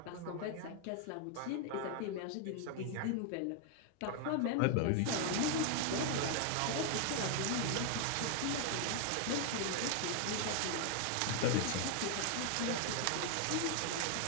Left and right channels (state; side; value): different; both; correlation 0.00